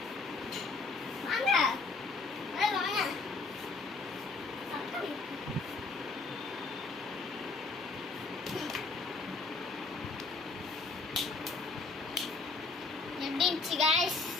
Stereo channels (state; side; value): quieter; right; 3.9 dB